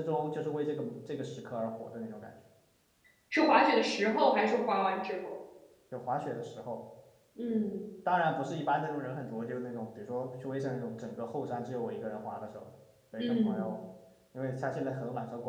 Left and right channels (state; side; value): identical; both; correlation 1.00